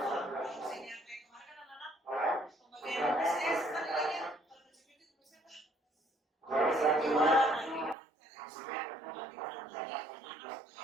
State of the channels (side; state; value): left; drops out; at 8.0 s